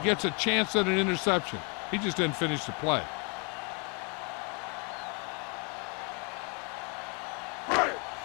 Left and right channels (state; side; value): quieter; right; 35.1 dB